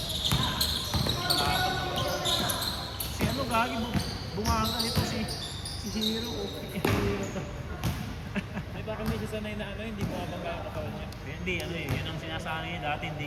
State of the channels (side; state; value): both; identical; correlation 1.00